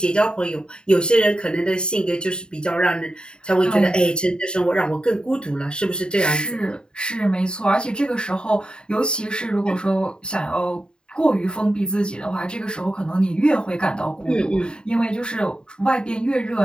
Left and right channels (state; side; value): late; right; 0.049 ms